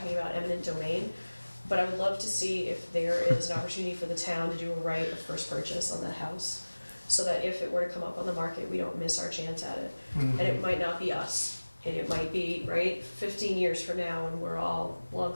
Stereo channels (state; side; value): inverted; both; correlation -1.00